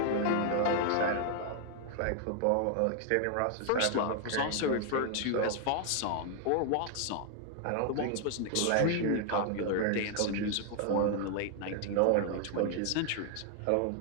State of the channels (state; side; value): different; both; correlation 0.00